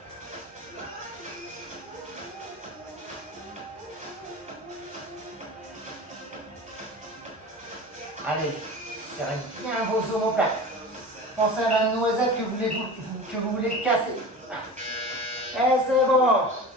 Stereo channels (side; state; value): both; normal; correlation 0.34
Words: Allez, serrez bien vos omoplates. Pensez à la noisette que vous voulez casser. Et c'est bon.